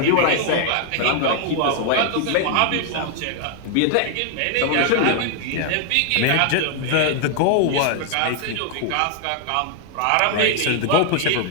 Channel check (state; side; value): different; both; correlation 0.00